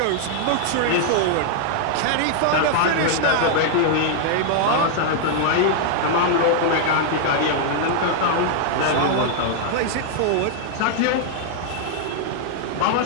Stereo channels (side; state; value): both; different; correlation -0.01